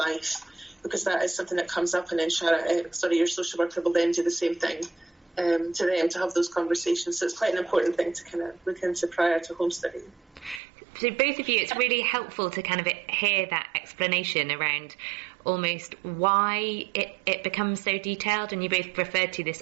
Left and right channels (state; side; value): drops out; left; at 10.6 s